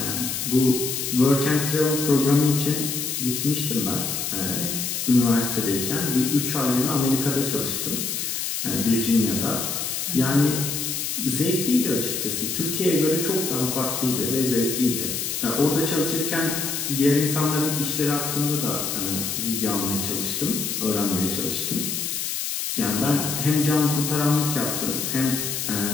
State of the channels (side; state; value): left; noise; hiss, 2 dB below the sound